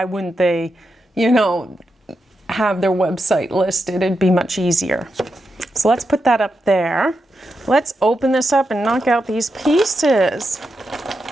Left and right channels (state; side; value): normal; both; correlation 0.86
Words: wouldn't they, have their website listed? It'd be much easier. So let's put that up there. Let's open this up and knock out these pieces.